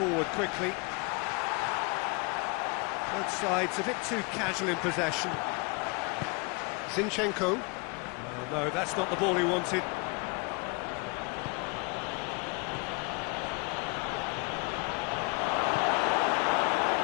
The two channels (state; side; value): quieter; right; 30.0 dB